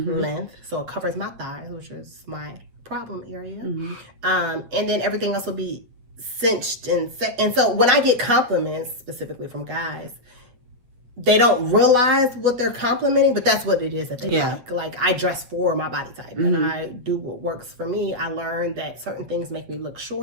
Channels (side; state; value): left; late; 8.6 ms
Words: So it covers my thighs, which is my problem area. And then everything else will be cinched and so when I get compliments specifically from guys, they don't realize what they're complimenting, but that's what it is that they Yeah. like. Like, I dress for my body type, and I do what works for me. I learned that certain things make me look